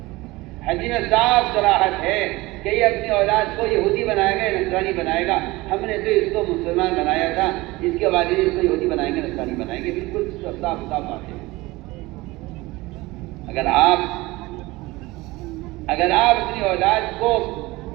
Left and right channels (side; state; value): left; quieter; 20.8 dB